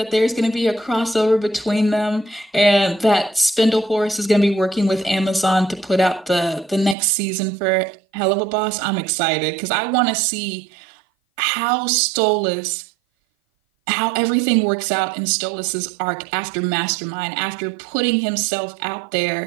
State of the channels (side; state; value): left; drops out; at 7.0 s